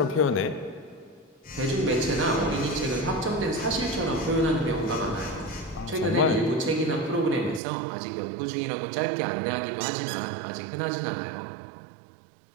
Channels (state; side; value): drops out; left; at 7.6 s